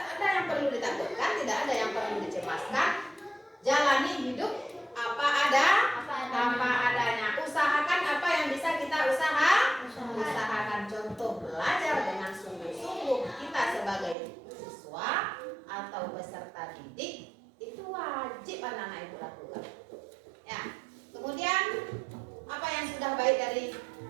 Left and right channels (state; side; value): drops out; left; at 14.2 s